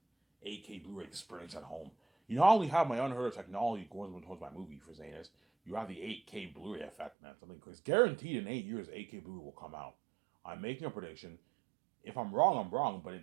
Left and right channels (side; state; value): left; drops out; at 7.1 s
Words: 8K Blu-ray experience at home. You not only have my unheard of technology going towards my movie for saying this, you have the 8K Blu-ray effect, man. Something crazy. Guaranteed in 8 years, 8K Blu-ray will come out. I'm making a prediction. If I'm wrong, I'm wrong. But